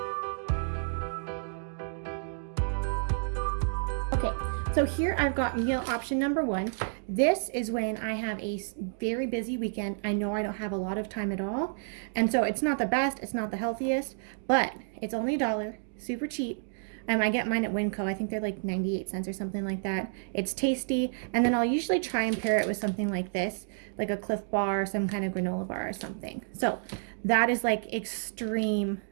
Okay, so here I've got meal option number 1. This is when I have a very busy weekend. I know I don't have a lot of time at all, and so it's not the best, it's not the healthiest, but it's only $1, super cheap. I get mine at Winco. I think they're like 98 cents or something like that. It's tasty, and then I'll usually try and pair it with something like this, like a Cliff Bar or some kind of granola bar or something. So that is like extreme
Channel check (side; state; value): left; silent; digital silence